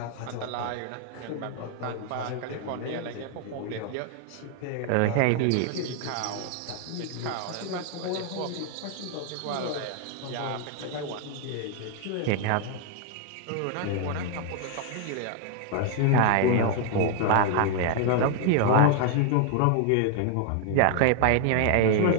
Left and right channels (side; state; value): both; different; correlation 0.00